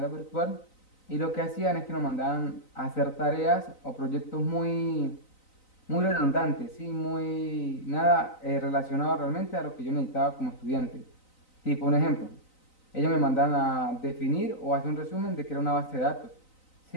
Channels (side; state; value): right; late; 3.9 ms